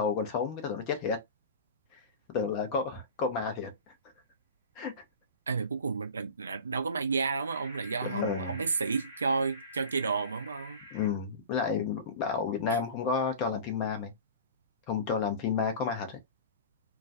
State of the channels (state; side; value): inverted; both; correlation -0.35